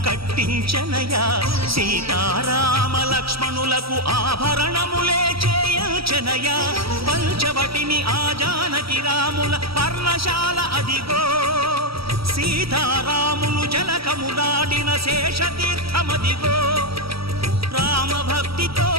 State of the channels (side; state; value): left; late; 0.76 ms